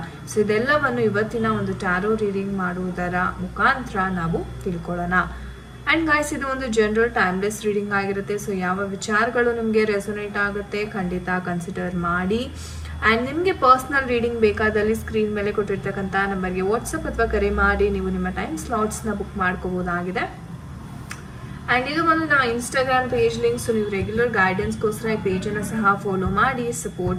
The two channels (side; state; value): both; identical; correlation 1.00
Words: ಸೊ ಇದೆಲ್ಲವನ್ನು ಇವತ್ತಿನ ಒಂದು ಟ್ಯಾರೋ ರೀಡಿಂಗ್ ಮಾಡುವುದರ ಮುಖಾಂತರ ನಾವು ತಿಳ್ಕೊಳ್ಳೋಣ. ಆ್ಯಂಡ್ ಗಾಯ್ಸ್, ಇದು ಒಂದು ಜನರಲ್ ಟೈಮ್ಲೆಸ್ ರೀಡಿಂಗ್ ಆಗಿರುತ್ತೆ. ಸೊ ಯಾವ ವಿಚಾರಗಳು ನಿಮಗೆ ರೆಸೊನೇಟ್ ಆಗುತ್ತೆ ಖಂಡಿತ ಕನ್ಸಿಡರ್ ಮಾಡಿ. ಆ್ಯಂಡ್ ನಿಮಗೆ ಪರ್ಸ್ನಲ್ ರೀಡಿಂಗ್ ಬೇಕಾದಲ್ಲಿ ಸ್ಕ್ರೀನ್ ಮೇಲೆ ಕೊಟ್ಟಿರ್ತಕ್ಕಂಥ ನಂಬರ್ಗೆ ವಾಟ್ಸಪ್ ಅಥವಾ ಕರೆ ಮಾಡಿ ನೀವು ನಿಮ್ಮ ಟೈಮ್ ಸ್ಲಾಟ್ಸ್ನ ಬುಕ್ ಮಾಡ್ಕೋಬೋದಾಗಿದೆ. ಆ್ಯಂಡ್ ಇದು ಒಂದು ನಮ್ಮ ಇನ್ಸ್ಟಾಗ್ರಾಮ್ ಪೇಜ್ ಲಿಂಕ್. ಸೊ ನೀವು ರೆಗ್ಯುಲರ್ ಗೈಡೆನ್ಸ್ಗೋಸ್ಕರ ಈ ಪೇಜನ್ನು ಸಹ ಫಾಲೋ ಮಾಡಿ,